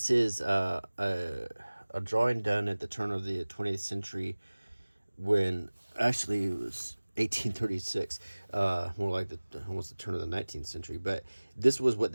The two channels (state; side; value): inverted; both; correlation -1.00